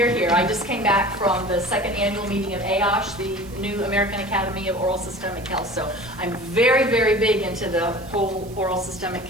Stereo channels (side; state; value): right; noise; hiss, 23 dB below the sound